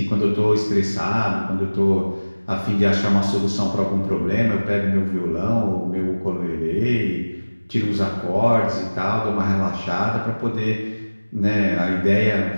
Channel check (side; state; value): both; inverted; correlation -1.00